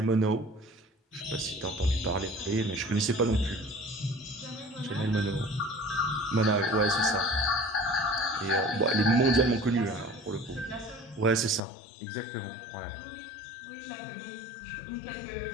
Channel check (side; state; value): right; drops out; at 11.6 s